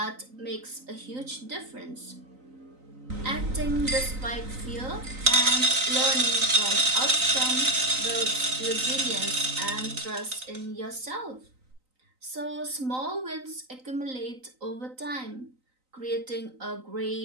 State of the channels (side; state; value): left; late; 3.9 ms